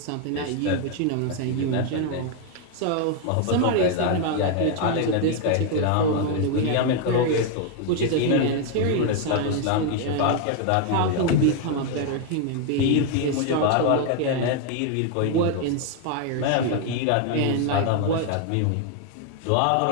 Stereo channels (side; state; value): both; different; correlation 0.01